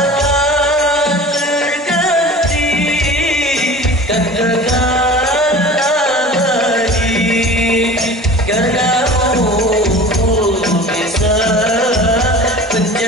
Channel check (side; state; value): both; normal; correlation 0.39